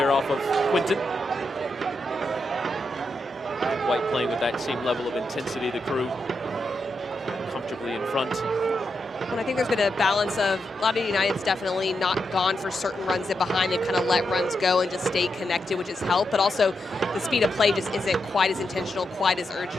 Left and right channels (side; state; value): both; normal; correlation 0.85